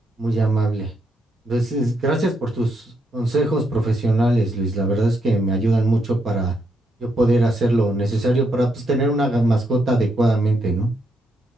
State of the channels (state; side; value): normal; both; correlation 0.78